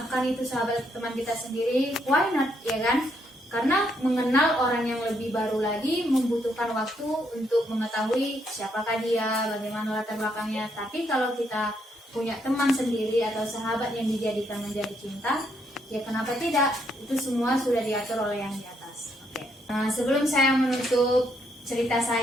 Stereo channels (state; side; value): normal; both; correlation 0.74